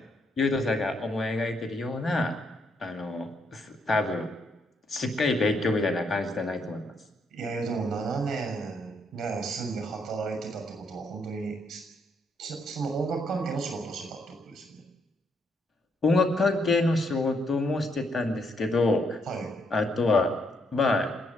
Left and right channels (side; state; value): both; normal; correlation 0.75